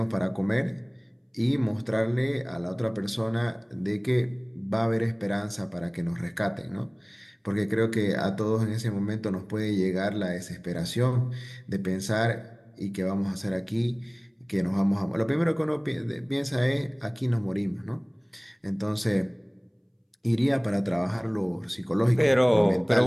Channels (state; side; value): identical; both; correlation 1.00